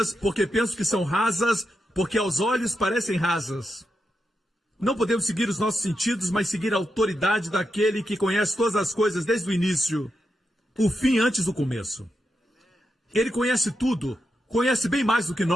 porque pensam que são rasas, porque aos olhos parecem rasas. Não podemos seguir os nossos sentidos, mas seguir a autoridade daquele que conhece todas as coisas desde o início, o fim antes do começo. Ele conhece tudo, conhece bem mais do que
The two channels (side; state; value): both; normal; correlation 0.86